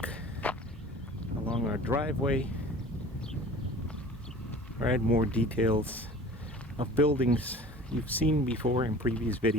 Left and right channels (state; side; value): normal; both; correlation 0.42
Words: along our driveway, right, more details of buildings you've seen before in previous